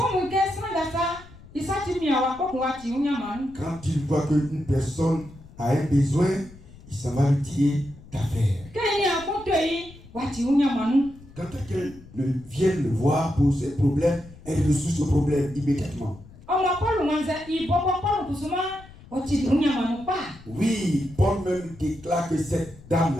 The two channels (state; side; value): noise; left; rumble, 20 dB below the sound